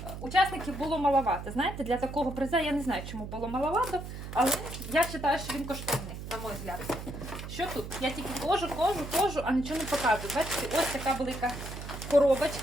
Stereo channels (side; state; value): right; noise; hum, 9 dB below the sound